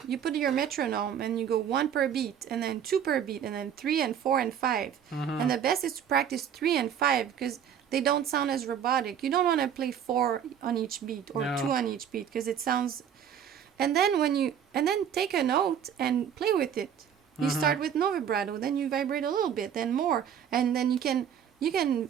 you put your metronome and you go 1 per beat and then 2 per beat and then 3 and 4 and 5. And the best is to practice 3 and 5 because they don't sound as robotic. You don't want to play 4 on each beat or 2 on each beat because it sounds. And then take a note and play with it. You start with no vibrato, then you vibrate a little bit, then more, and then you can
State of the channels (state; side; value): quieter; left; 8.7 dB